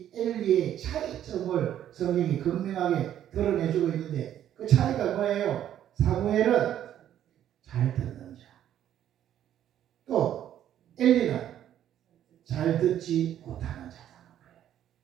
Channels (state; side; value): quieter; left; 11.0 dB